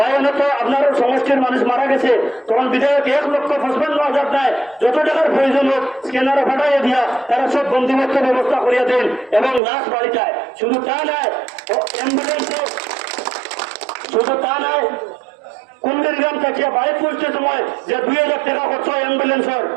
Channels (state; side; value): drops out; left; at 9.6 s